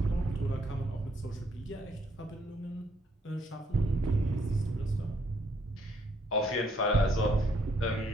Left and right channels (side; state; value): both; normal; correlation 0.70